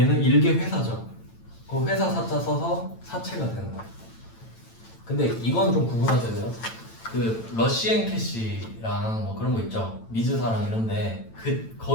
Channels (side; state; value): right; late; 9.0 ms